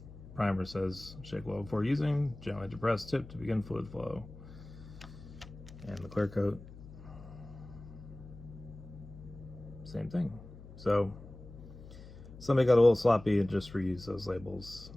primer says shake well before using, gently depress tip to begin fluid flow. And the clear coat, same thing. So somebody got a little sloppy and just reused those labels,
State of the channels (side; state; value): left; noise; hum, 16 dB below the sound